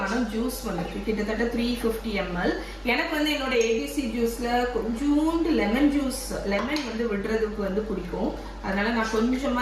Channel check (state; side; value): identical; both; correlation 1.00